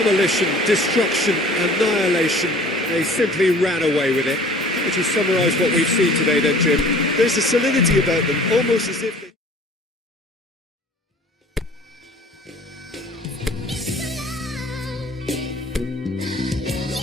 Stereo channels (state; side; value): normal; both; correlation 0.48